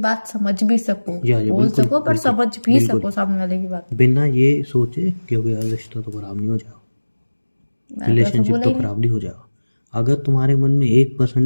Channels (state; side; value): inverted; both; correlation -1.00